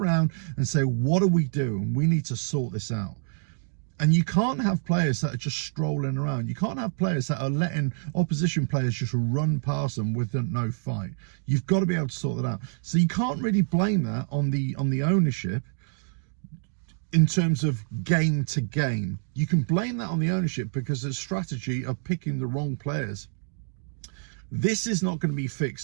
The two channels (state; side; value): silent; left; digital silence